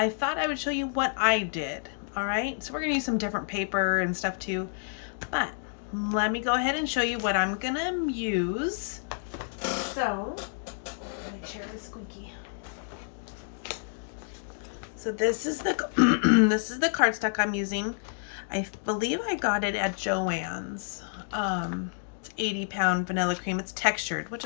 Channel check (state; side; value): silent; right; digital silence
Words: thought I would show you what I did. All right, so we're gonna use some different paper and stuff too, but let me go ahead and show you what I'm gonna use. So, my chair is squeaky. So this is the this is the cardstock I'm using. I believe I got it at Joann's. It's 80-pound vanilla cream. It's textured, which